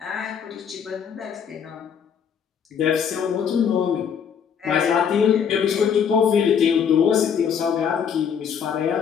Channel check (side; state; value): right; quieter; 7.4 dB